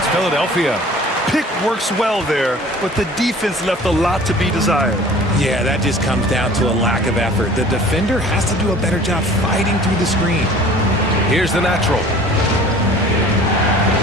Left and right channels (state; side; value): normal; both; correlation 0.47